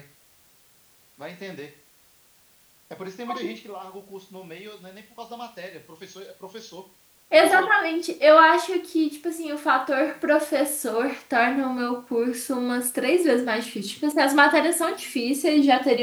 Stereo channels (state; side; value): identical; both; correlation 1.00